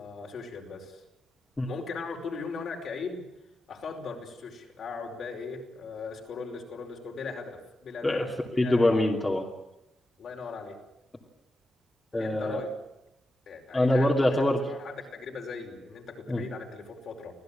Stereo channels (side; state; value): both; normal; correlation 0.89